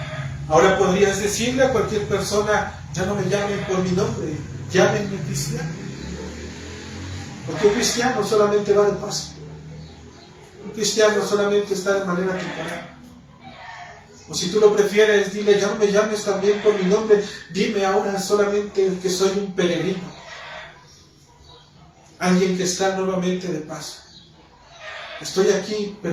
Ahora podrías decirle a cualquier persona, ya no me llamen por mi nombre, llámenme cristiano. Porque un cristiano solamente va de paso. Un cristiano solamente está de manera temporal. O si tú lo prefieres, dile, ya no me llames también por mi nombre, dime ahora solamente que soy un peregrino. Alguien que está nuevamente de paso. Estoy aquí,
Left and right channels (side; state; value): both; identical; correlation 1.00